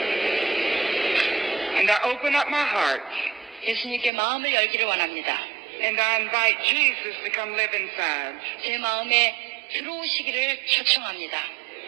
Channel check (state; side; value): drops out; left; at 4.1 s